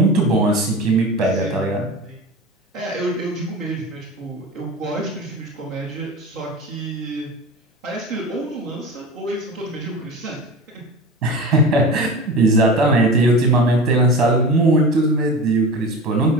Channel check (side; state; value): both; normal; correlation 0.31